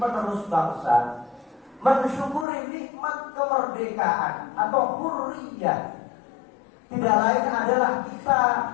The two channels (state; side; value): drops out; right; at 2.5 s